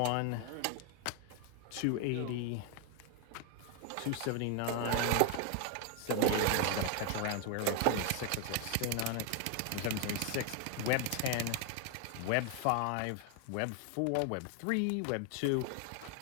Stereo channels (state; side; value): different; both; correlation 0.00